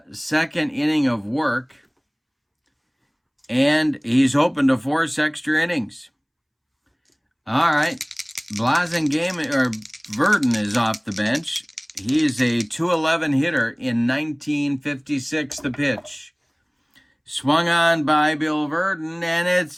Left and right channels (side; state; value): both; identical; correlation 1.00